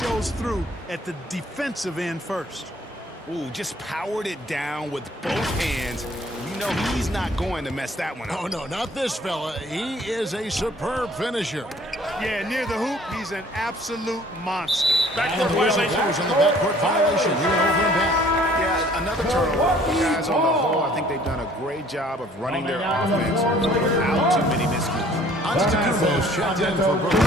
through at the defensive end first. Ooh, just powered it down with both hands. You know he's not going to mess that one up. Oh, no, not this fella. He is a superb finisher. Yeah, near the hoop, he's an absolute monster. Backcourt violation. On the backcourt violation. He went over and back. Yeah, another turnover. Guys, on the whole, I think they've done a great job of running their offense without too many miscues. Antetokounmpo's checked in for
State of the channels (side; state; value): both; normal; correlation 0.55